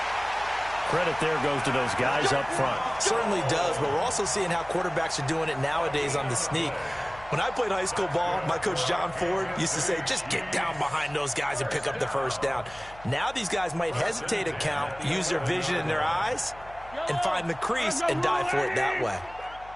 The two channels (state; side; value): noise; left; hum, 21 dB below the sound